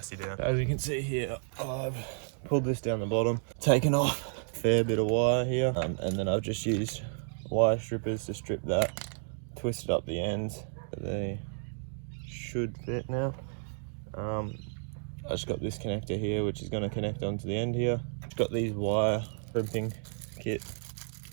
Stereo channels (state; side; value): silent; left; 57 dB below the other